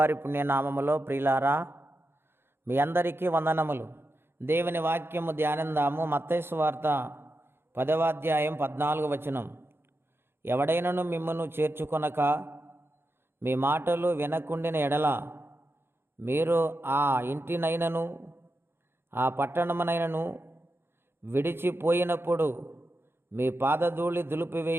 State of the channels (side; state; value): left; late; 0.11 ms